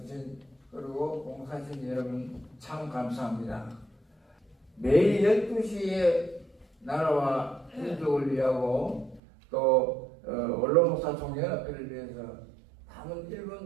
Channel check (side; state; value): left; drops out; at 9.2 s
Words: 그리고 봉사하신 여러분 참 감사합니다. 매일 12시에 나라와 민족을 위하고 또 원로목사 총연합회를 위해서 남은